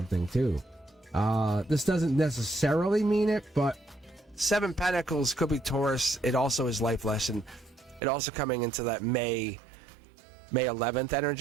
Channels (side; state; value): left; drops out; at 8.0 s